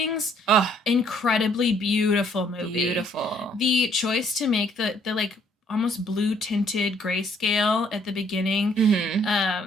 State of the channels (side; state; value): both; normal; correlation 0.65